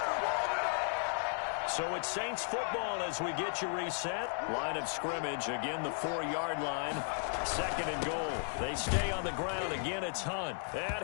So it's Saints football as we get you reset. Line of scrimmage, again the 4-yard line. 2nd and goal. They stay on the ground. Again, it's Hunt. And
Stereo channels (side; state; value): right; silent; 54 dB below the other